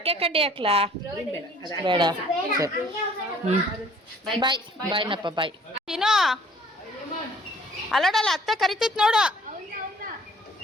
ಕಡ್ಡಿ ಹಾಕ್ಲಾ? ಬೇಡ ಸರಿ. ಬಾಯ್ ಬಾಯ್ನಪ್ಪ ಬಾಯ್. ತಿನ್ನೋ ಅಲ್ಲೋಡಲ್ಲ ಅತ್ತೆ ಕರಿತೈತ್ ನೋಡು.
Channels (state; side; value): normal; both; correlation 0.56